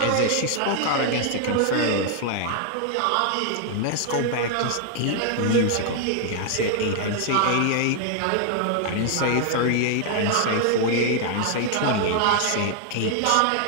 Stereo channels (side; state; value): both; different; correlation 0.00